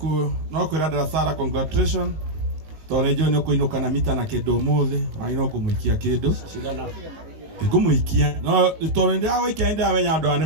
kwira Dara Sara congratulations tore jo no kuinuka na mita na kindu muthe ai no kumuikia kindu cigana ngumuikia no tore ndia weekend awenya andu ani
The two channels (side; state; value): left; late; 19 ms